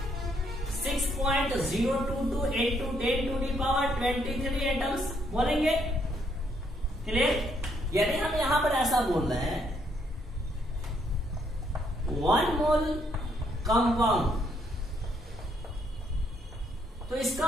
6.022 इंटू 10⁻23 एटम्स बोलेंगे। क्लियर? यदि हम यहां पर ऐसा बोल रहे हैं 1 मोल कंपाउंड तो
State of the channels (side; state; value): both; normal; correlation 0.71